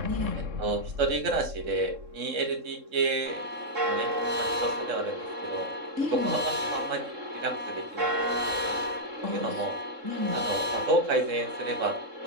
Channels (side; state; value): left; late; 3.7 ms